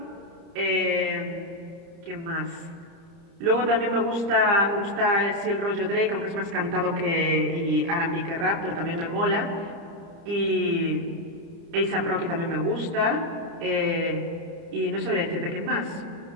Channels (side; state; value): left; late; 30 ms